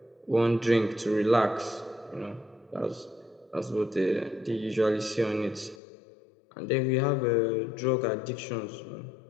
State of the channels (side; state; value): right; drops out; at 5.8 s